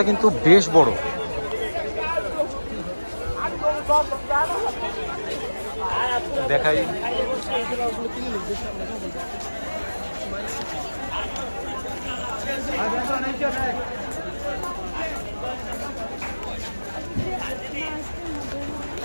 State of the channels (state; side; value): inverted; both; correlation -1.00